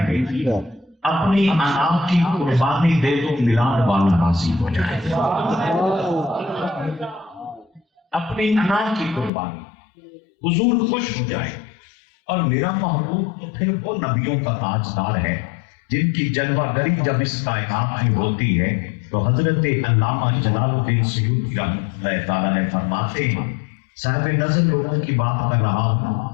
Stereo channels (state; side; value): drops out; right; at 9.3 s